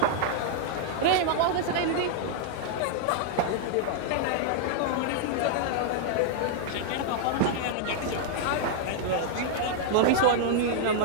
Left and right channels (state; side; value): different; both; correlation -0.01